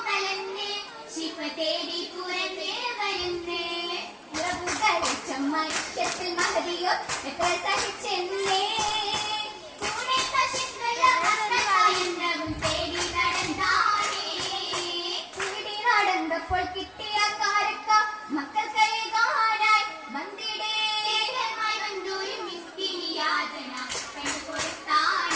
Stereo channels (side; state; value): both; identical; correlation 1.00